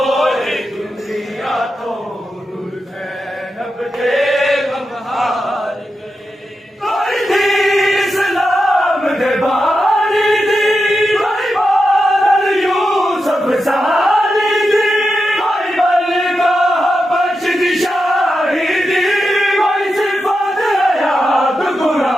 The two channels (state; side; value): normal; both; correlation 0.89